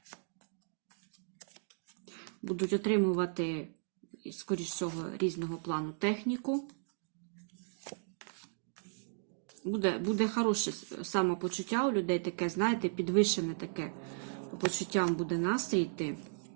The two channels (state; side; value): silent; left; digital silence